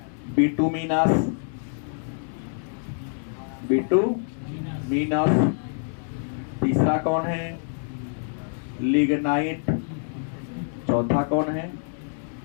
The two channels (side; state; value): right; silent; digital silence